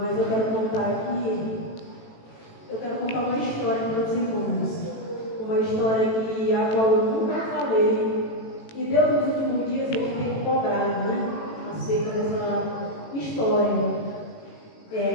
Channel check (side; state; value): right; late; 18 ms